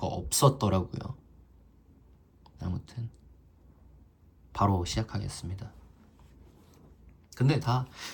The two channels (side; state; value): both; identical; correlation 1.00